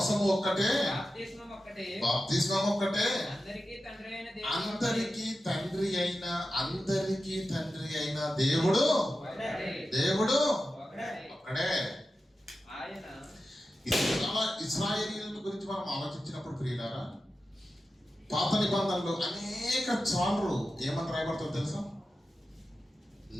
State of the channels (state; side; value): normal; both; correlation 0.92